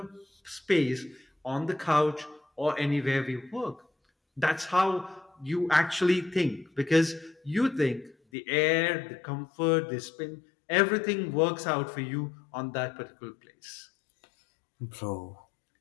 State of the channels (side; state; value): right; drops out; at 8.2 s